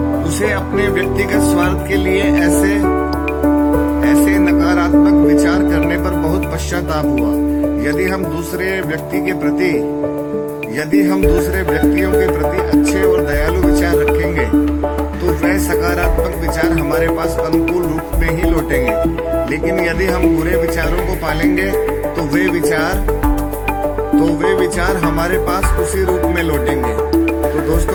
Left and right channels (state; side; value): identical; both; correlation 1.00